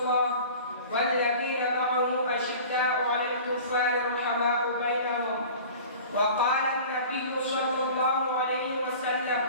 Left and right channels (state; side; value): inverted; both; correlation -0.41